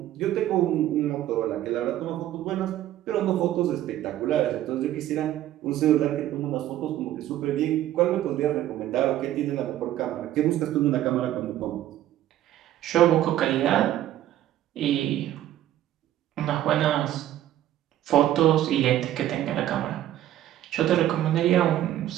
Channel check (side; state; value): left; quieter; 13.0 dB